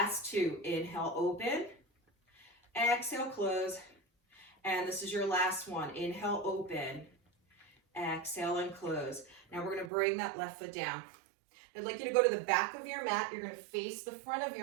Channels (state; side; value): drops out; left; at 9.9 s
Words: 2. Inhale, open. Exhale, close. And this is your last one. Inhale, open. Exhale, and close. Now we're going to bring that left foot down. I'd like you to go to the back of your mat. You're going to face the front of